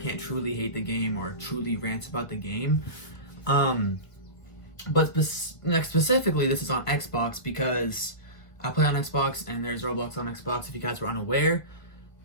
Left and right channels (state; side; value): late; right; 1.4 ms